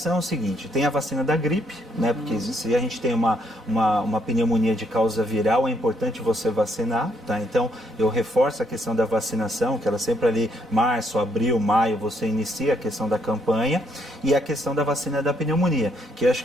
o seguinte, tem a vacina da gripe, né? Porque se a gente tem uma pneumonia de causa viral, é importante você vacinar, tá? Então, eu reforço a questão da vacinação, que ela sempre ali, março, abril, maio, você inicia a questão da campanha, e a questão da vacina da pneumonia, que eu acho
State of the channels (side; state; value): both; normal; correlation 0.72